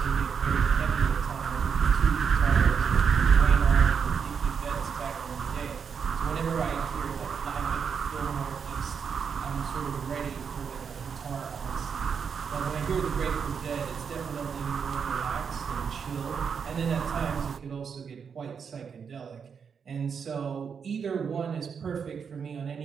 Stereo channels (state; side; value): quieter; left; 6.5 dB